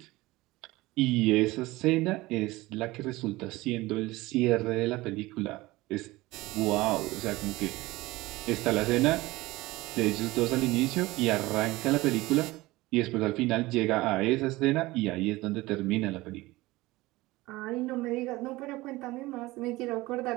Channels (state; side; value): quieter; left; 19.8 dB